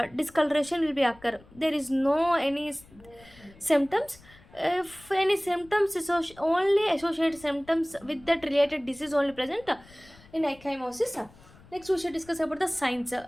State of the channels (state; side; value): noise; left; rumble, 24 dB below the sound